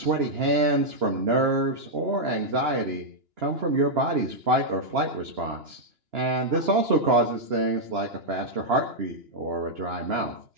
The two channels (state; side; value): late; left; 2.9 ms